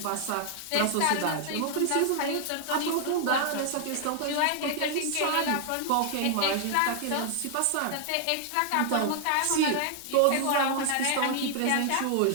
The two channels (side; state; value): both; different; correlation 0.00